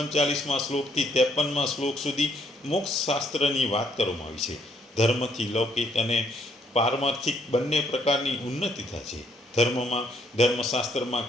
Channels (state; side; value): normal; both; correlation 0.69